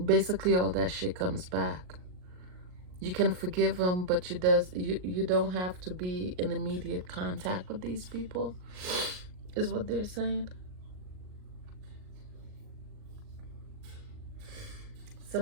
basically all that shit comes back. You can forgive them, but you don't have to be in immediate contact with these people, is what they're saying.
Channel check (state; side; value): late; left; 38 ms